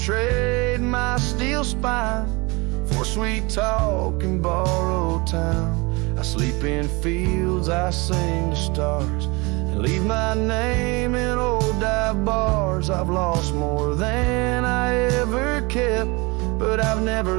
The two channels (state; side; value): quieter; left; 26.1 dB